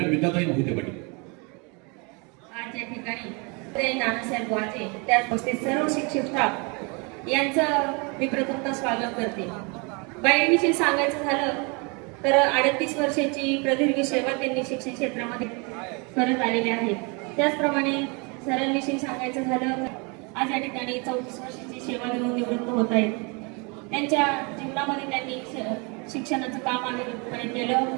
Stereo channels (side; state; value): left; quieter; 31.5 dB